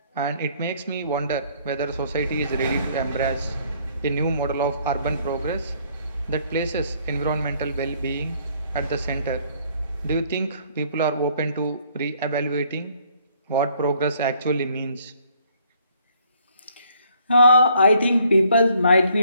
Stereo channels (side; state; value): both; inverted; correlation -0.64